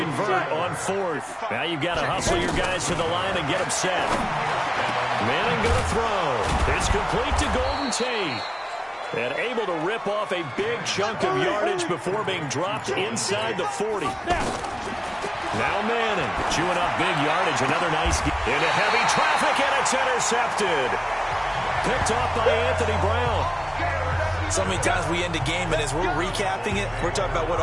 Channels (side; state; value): both; identical; correlation 1.00